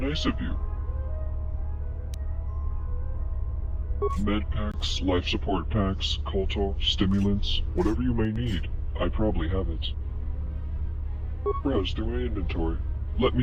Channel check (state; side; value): identical; both; correlation 1.00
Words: of you. Med packs, life support packs, colto, stimulants, whatever you may need, I probably have it. Browse through my inventory. Let